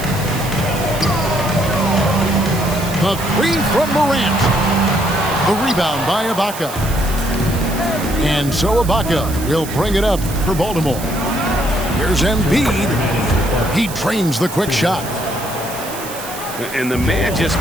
The three from Morant. The rebound by Ibaka. And so Ibaka will bring it up for Baltimore. Here's Embiid. He trains the quick shot. And the man just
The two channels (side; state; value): right; noise; hiss, 12 dB below the sound